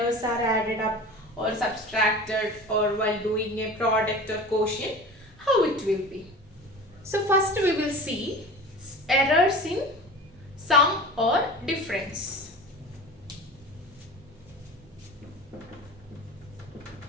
are added up or subtracted, or while doing a product or quotient, how it will be. So first we will see errors in sum or difference.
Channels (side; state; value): both; normal; correlation 0.36